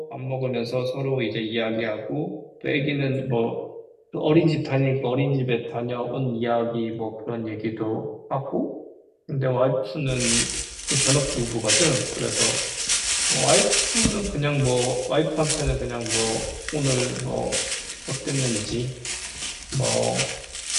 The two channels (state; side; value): identical; both; correlation 1.00